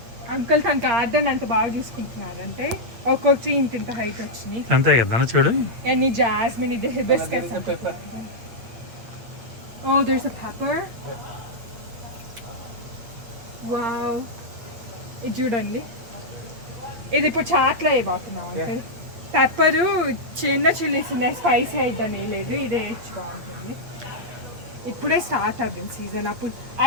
అంకుల్ తన గార్డెన్ అంత బాగా చూసుకుంటున్నారంటే ఒక్కొక్కటి ఇంత హైట్ వచ్చినాయి. అంతే కదా చూడు. ఎన్ని జాస్మిన్, ఇది hibiscus. Oh there's a pepper. Wow, ఇది చూడండి, ఇది ఇప్పుడు చాట్లో వేయబోతున్నాం అంకుల్. పెప్పరు చిన్న చిల్లీస్ ఉన్నాయి, స్పైసీ అయిద్దని లేదు, ఇదే వేసి బాగుంటుంది. ఇప్పుడే స్టార్ట్ అవుతుంది సీజన్. అప్పుడు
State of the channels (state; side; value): late; left; 8.4 ms